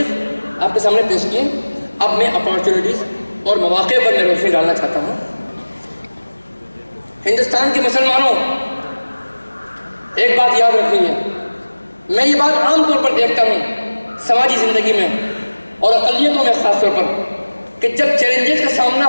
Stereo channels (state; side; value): inverted; both; correlation -1.00